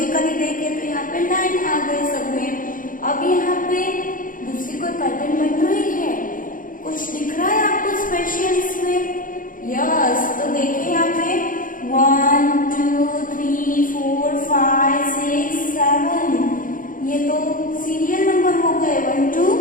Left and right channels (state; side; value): late; right; 0.39 ms